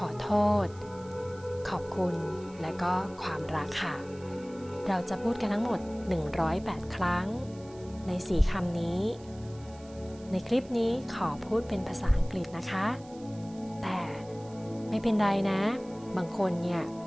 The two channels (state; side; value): noise; right; hiss, 24 dB below the sound